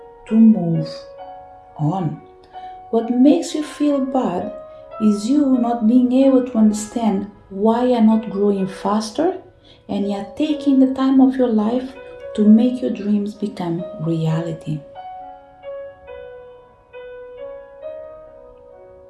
to move on? What makes you feel bad is you not being able to understand why you're not growing faster, and you're taking the time of your life to make your dreams become reality.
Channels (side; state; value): both; identical; correlation 1.00